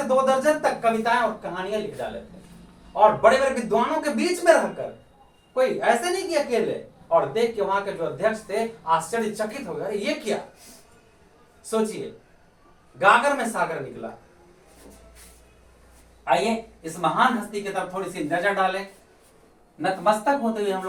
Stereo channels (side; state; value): both; identical; correlation 1.00